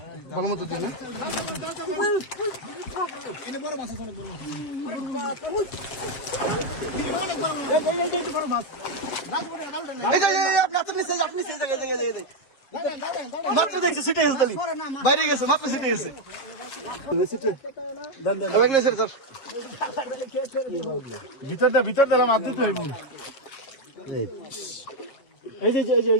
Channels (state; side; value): late; right; 7.4 ms